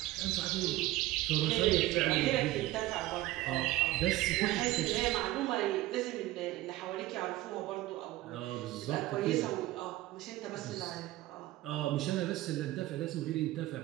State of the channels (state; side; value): quieter; left; 16.9 dB